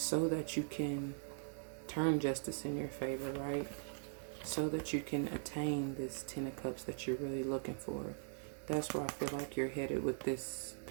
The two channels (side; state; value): left; silent; digital silence